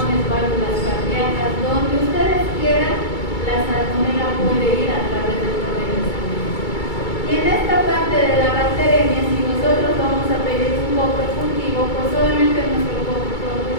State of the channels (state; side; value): late; right; 2.3 ms